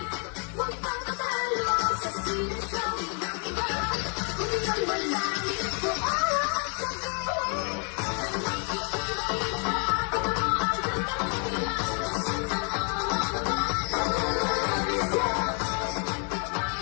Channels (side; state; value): right; quieter; 39.3 dB